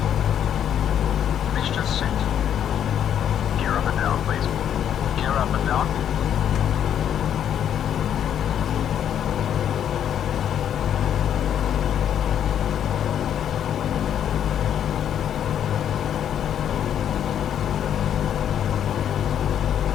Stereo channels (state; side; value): quieter; right; 9.5 dB